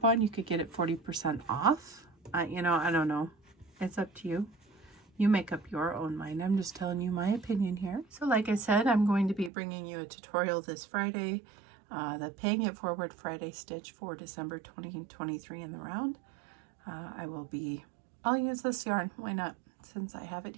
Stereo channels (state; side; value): drops out; left; at 9.5 s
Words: you could get it 40% off. You know, I don't know. It's up to you. You make up your own mind. I'm just telling you my opinion here. So like I said, I'm going to be bringing you a tutorial this Friday, the Paying It Forward Friday stitch for December 2023 in the round. I'll use this yarn. Why not? Since I have it